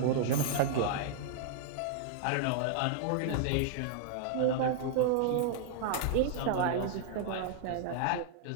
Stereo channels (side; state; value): both; different; correlation -0.01